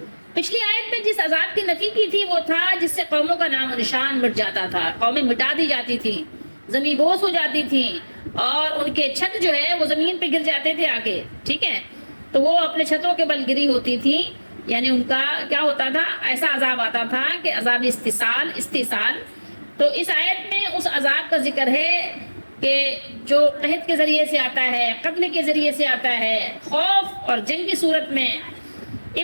پچھلی آیت میں جس عذاب کی نفی کی تھی وہ تھا جس سے قوموں کا نام و نشان مٹ جاتا تھا, قومیں مٹا دی جاتی تھیں, زمین بوس ہو جاتی تھیں, اور ان کے چھت جو ہے وہ زمین پہ گر جاتے تھے آ کے, ٹھیک ہے. تو وہ اپنے چھتوں کے بل گری ہوتی تھی, یعنی ان کا کیا ہوتا تھا, ایسا عذاب آتا تھا کہ عذاب استحصال. تو اس آیت میں اس عذاب کا ذکر ہے کہ جو قحط کے ذریعے سے آتا ہے, قتل کے ذریعے سے آتا ہے, خوف اور جنگ کی صورت میں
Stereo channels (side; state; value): both; inverted; correlation -1.00